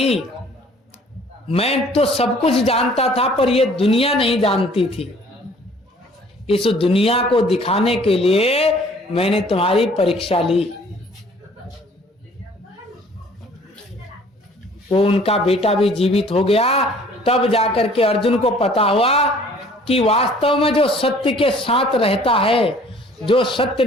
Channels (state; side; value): normal; both; correlation 0.55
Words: मैं तो सब कुछ जानता था पर ये दुनिया नहीं जानती थी, इस दुनिया को दिखाने के लिए मैंने तुम्हारी परीक्षा ली। वो उनका बेटा भी जीवित हो गया। तब जाकर के अर्जुन को पता हुआ कि वास्तव में जो सत्य के साथ रहता है, जो सत्य